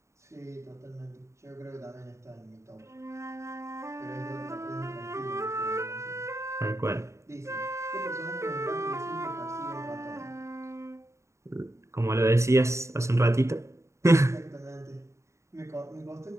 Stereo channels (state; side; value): late; left; 0.14 ms